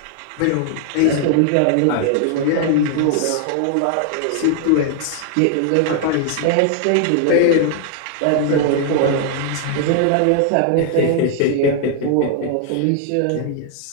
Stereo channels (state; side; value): different; both; correlation 0.00